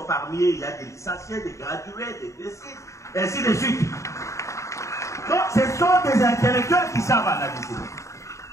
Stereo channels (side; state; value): right; late; 0.15 ms